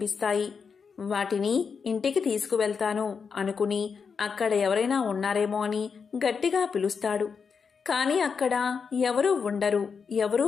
వాటిని ఇంటికి తీసుకువెళ్తాను అనుకుని అక్కడ ఎవరైనా ఉన్నారేమో అని గట్టిగా పిలుస్తాడు. కాని అక్కడ ఎవరూ ఉండరు, ఎవరూ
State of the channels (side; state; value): right; quieter; 5.8 dB